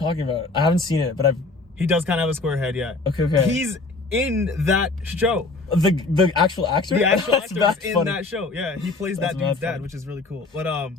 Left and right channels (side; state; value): right; quieter; 3.5 dB